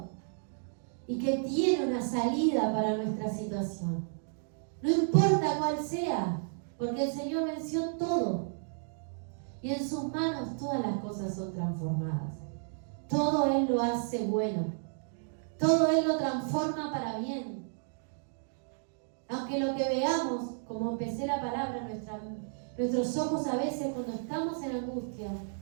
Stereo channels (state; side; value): silent; left; digital silence